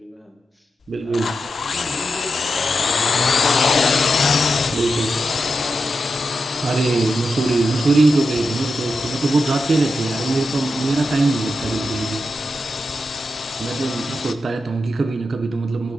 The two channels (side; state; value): both; normal; correlation 0.88